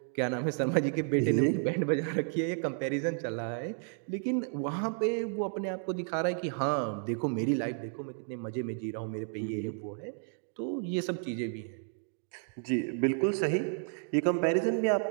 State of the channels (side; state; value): left; silent; 56 dB below the other